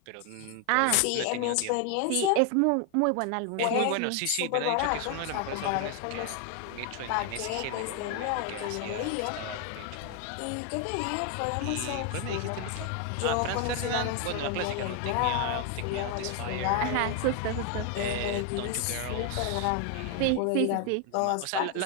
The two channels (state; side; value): different; both; correlation 0.01